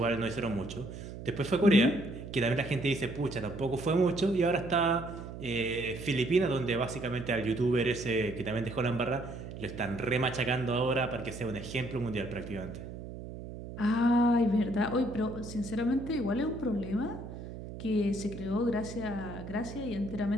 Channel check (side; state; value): right; noise; hum, 10 dB below the sound